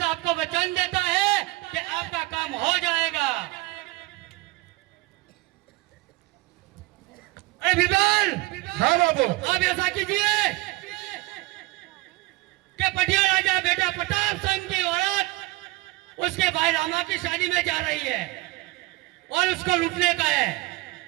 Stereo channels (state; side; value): quieter; left; 20.3 dB